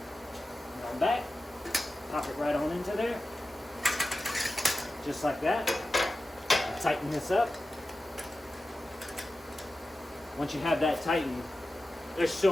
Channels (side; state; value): both; normal; correlation 0.94